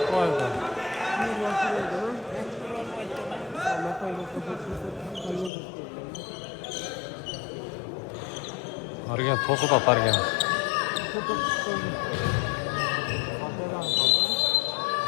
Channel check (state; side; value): drops out; right; at 5.5 s